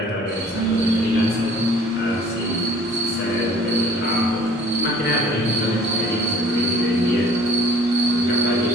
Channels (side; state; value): both; normal; correlation 0.52